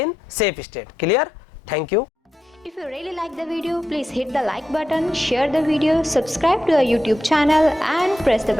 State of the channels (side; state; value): both; normal; correlation 0.87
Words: safe state. Clear? Thank you. If you really like the video, please hit the like button, share the video, subscribe to our YouTube channel and press the